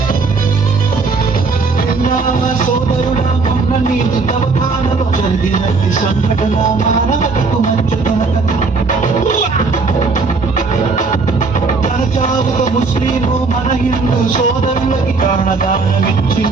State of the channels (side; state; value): left; quieter; 4.2 dB